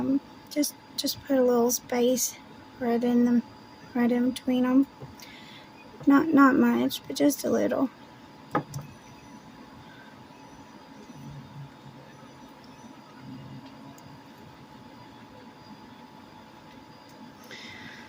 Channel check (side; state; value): both; identical; correlation 1.00